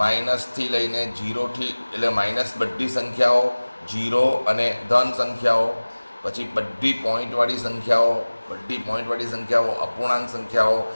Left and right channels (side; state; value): both; inverted; correlation -1.00